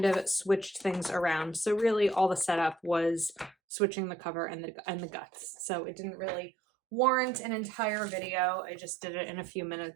of switched things around. So really all the setup was switching the cover and the guts. So it didn't really warrant an entire video. I just did it in a few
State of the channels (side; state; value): left; drops out; at 3.6 s